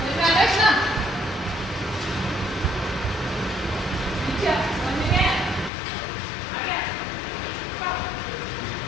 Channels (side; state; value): right; drops out; at 5.7 s